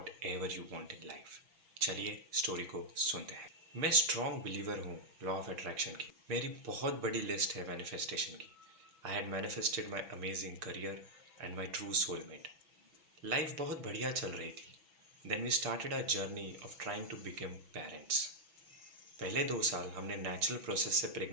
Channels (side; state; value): left; late; 6.1 ms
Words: whatever you want in life. चलिए स्टोरी को सुनते हैं। मैं स्ट्रॉन्ग बिलीवर हूँ लॉ ऑफ अट्रैक्शन की। मेरी बहुत बड़ी लिस्ट है मैनिफेस्टेशन की। I had manifested my amazing career and my true soulmate. Life बहुत बढ़िया चल रही थी। Then we started a journey of trying to become parents. पहले 2 साल हमने नेचुरल प्रोसेस से